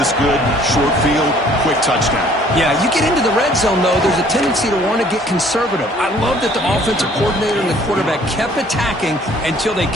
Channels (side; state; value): both; normal; correlation 0.57